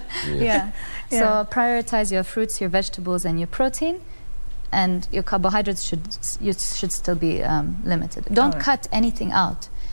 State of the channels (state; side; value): inverted; both; correlation -1.00